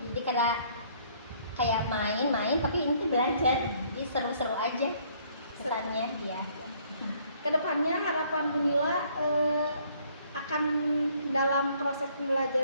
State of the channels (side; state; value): both; inverted; correlation -0.62